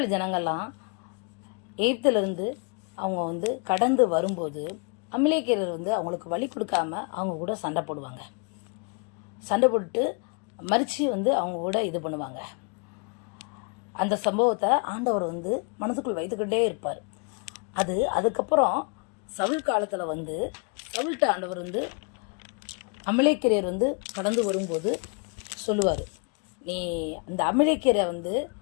ஜனங்கள்லாம் எகிப்திலிருந்து அவங்க கடந்து வரும்போது அமலேக்கியர் அவங்களுக்கு வழி கொடுக்காம அவங்க கூட சண்டை போடுவாங்க. சண்டை போட்டு மறித்து அவங்க கூட இது பண்ணுவாங்க. அந்த சம்பவத்தை ஆண்டவர் மனதுக்குள் வைத்துக்கிட்டே இருப்பார். அதுக்கப்புறம் சவுல் காலத்தில் சவுல்ட்ட ஆண்டவர் அமலேக்கியர் கடந்து வரும்போது சொல்லுவார், நீ அந்த அமலேக்கியரை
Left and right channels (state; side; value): quieter; right; 38.0 dB